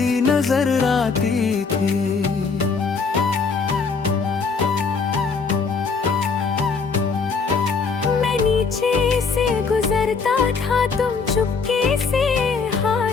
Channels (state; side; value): quieter; right; 5.0 dB